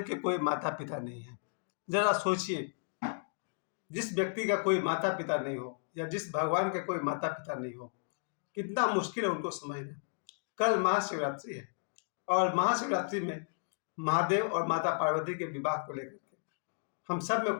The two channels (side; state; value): right; silent; digital silence